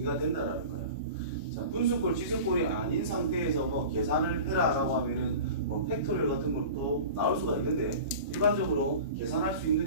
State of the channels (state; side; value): inverted; both; correlation -0.36